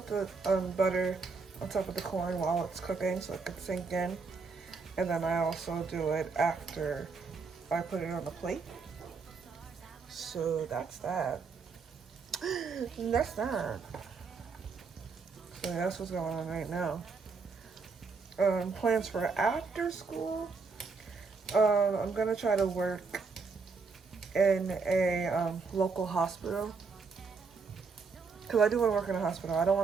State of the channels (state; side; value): quieter; left; 4.7 dB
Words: butter on top of the corn while it's cooking so it could sink in. And then I also do it after I put it on the plate. So that's that. And that's that. So that's what's going on right now. Plans for after school. I'm gonna try to work in a local hospital, because I do want to work in a hospital. I don't